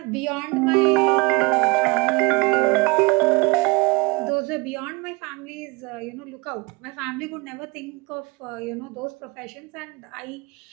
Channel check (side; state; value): left; quieter; 26.4 dB